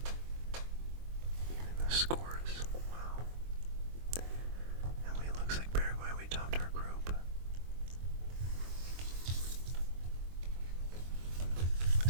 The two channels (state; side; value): late; left; 23 ms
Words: Even the scores. Wow. And we looks like Paraguay, we topped our group.